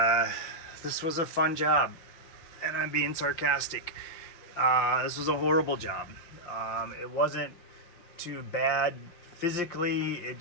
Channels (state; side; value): late; right; 5.9 ms